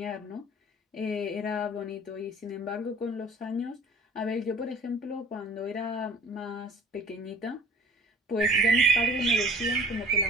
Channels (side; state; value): both; normal; correlation 0.46